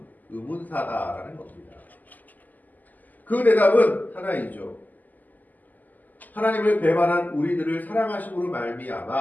의문사다라는 겁니다. 그 대답은 하나이죠. 하나님을 배반한 우리들을 사랑하심으로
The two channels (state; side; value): late; right; 0.082 ms